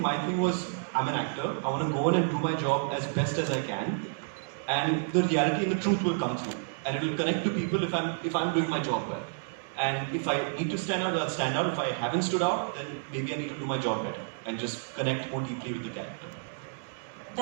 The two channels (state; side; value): silent; left; 58 dB below the other